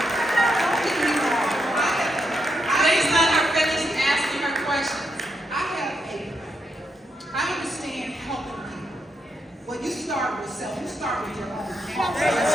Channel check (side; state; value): both; normal; correlation 0.81